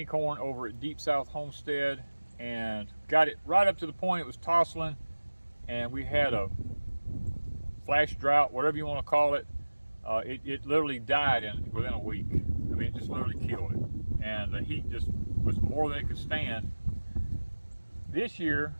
corn over at Deep South Homestead and got it right up to the point it was tossling, and we had a flash drought, whatever you want to call it. It literally died within a week. I mean, it just literally killed it, and the heat just was more than it could stand. This year,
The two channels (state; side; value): inverted; both; correlation -1.00